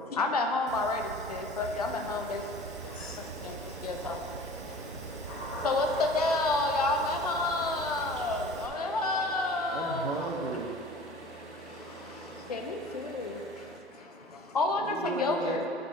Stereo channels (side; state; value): both; normal; correlation 0.43